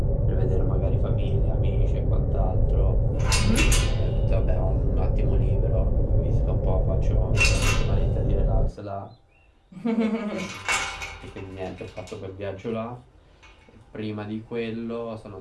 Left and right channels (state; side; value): identical; both; correlation 1.00